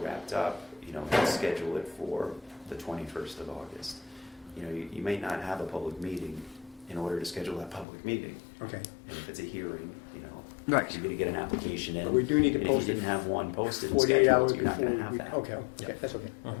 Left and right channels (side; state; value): right; drops out; at 7.9 s